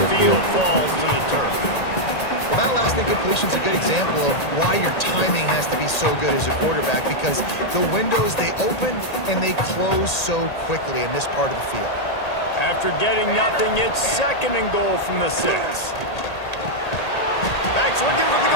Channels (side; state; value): right; late; 1.8 ms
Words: field falls to the turf. Well, that last incompletion is a good example of why your timing has to be so good as a quarterback, because the windows, they open and they close so quickly in this part of the field. After getting nothing, it's 2nd and goal from the 6. Backs looking for the